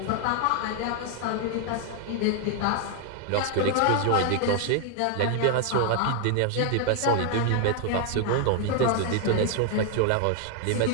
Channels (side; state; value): both; different; correlation 0.00